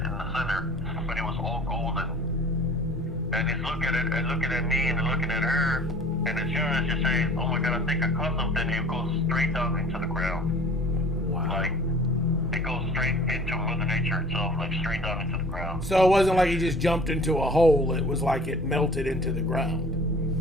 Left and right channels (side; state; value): both; normal; correlation 0.47